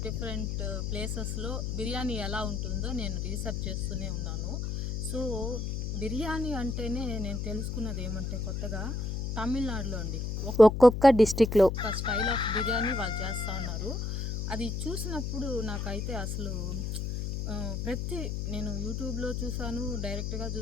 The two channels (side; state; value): left; noise; hum, 2 dB below the sound